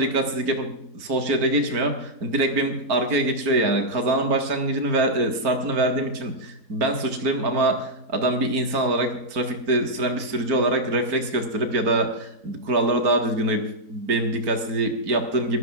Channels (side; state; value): left; late; 4.4 ms